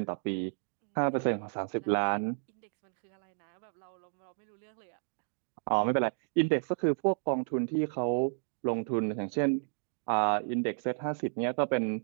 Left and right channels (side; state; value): left; silent; digital silence